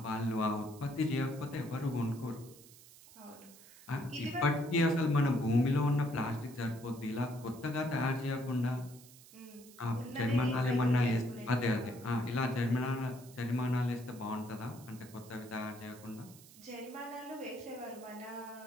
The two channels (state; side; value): noise; right; hiss, 21 dB below the sound